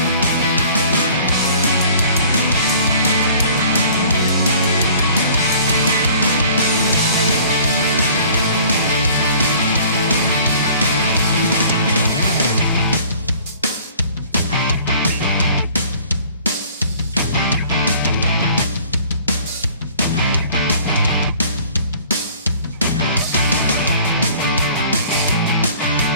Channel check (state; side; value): inverted; both; correlation -0.51